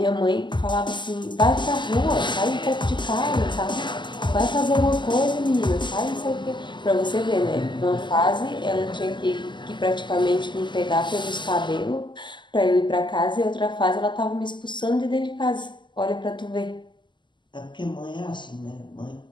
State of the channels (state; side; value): late; right; 0.22 ms